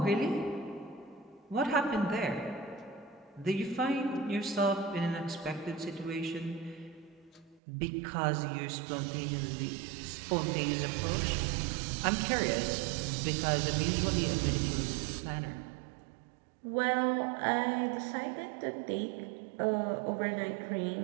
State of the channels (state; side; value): drops out; left; at 7.6 s